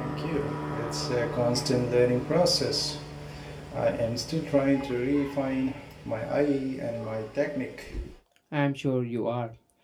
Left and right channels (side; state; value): both; identical; correlation 1.00